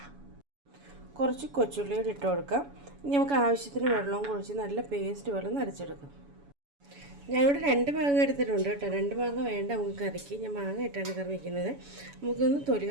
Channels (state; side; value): late; left; 7.1 ms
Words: കുറച്ച് കൊച്ചുള്ളി ഇട്ട് കൊടുക്കാം. ഇനി നമുക്ക് ആവശ്യത്തിന് വെള്ളവും കുഴിച്ച് നല്ല പേസ്റ്റ് പോലെ നരച്ചെടുക്കാം. ഞാനിവിടെ 2 മാങ്ങ എടുത്തിട്ടുണ്ട് കേട്ടോ. 2 മാങ്ങ വേണ്ട നമുക്ക് കറിക്ക്. ഞാൻ മാങ്ങ ഇട്ടാണ് കറി വയ്ക്കുന്നത്. നമുക്കൊന്ന് തൊലി